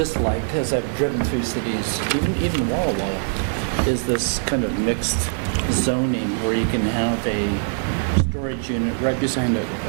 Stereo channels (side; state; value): left; silent; digital silence